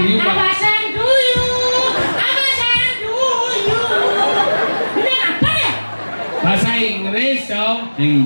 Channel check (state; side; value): inverted; both; correlation -1.00